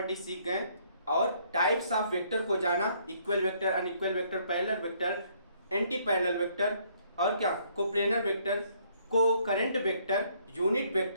सीख गए, और टाइप्स ऑफ वेक्टर को जाना, equal vector, unequal vector, parallel vector, anti parallel vector, और क्या कोप्लेनर वेक्टर, को current vector, unit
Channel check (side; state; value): both; inverted; correlation -0.66